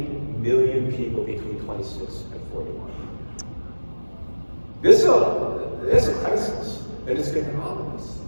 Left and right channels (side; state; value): both; inverted; correlation -1.00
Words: million people between 26 and 41. This is a crisis, and it's getting ominous.